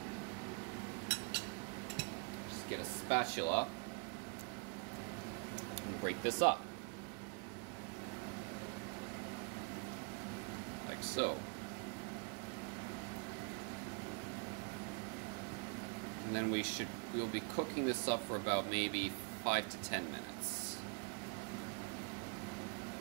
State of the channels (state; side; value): quieter; left; 35.5 dB